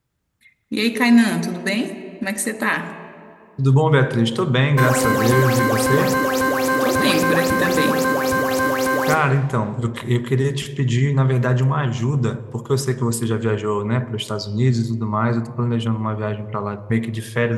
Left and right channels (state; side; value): identical; both; correlation 1.00